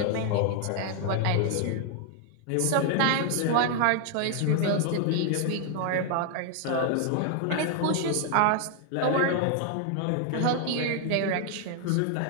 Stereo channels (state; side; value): different; both; correlation 0.00